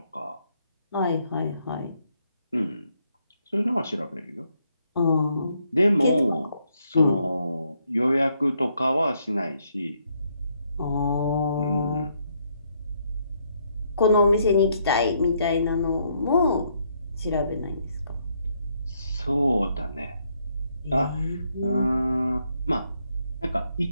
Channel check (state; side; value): inverted; both; correlation -0.73